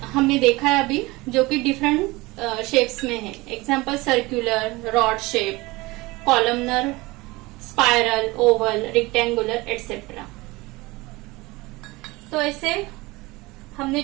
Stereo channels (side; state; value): left; quieter; 22.0 dB